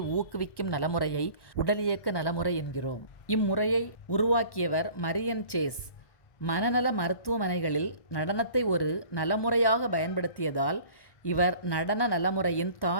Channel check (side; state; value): right; late; 1.1 ms